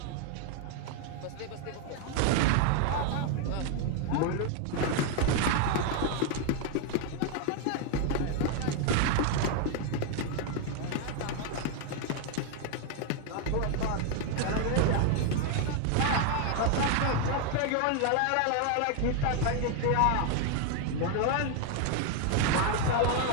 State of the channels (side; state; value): both; different; correlation 0.01